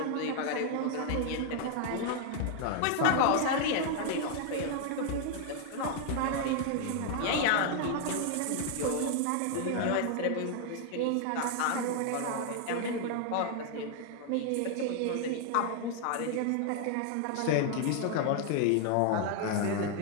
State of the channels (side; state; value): both; different; correlation 0.00